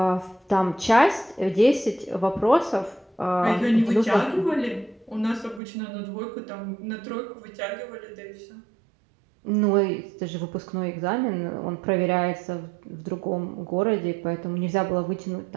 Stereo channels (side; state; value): left; drops out; at 5.6 s